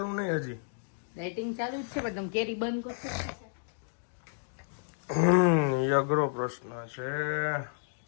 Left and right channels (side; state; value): right; silent; digital silence